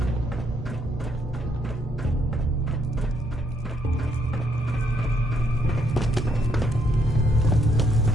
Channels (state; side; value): normal; both; correlation 0.72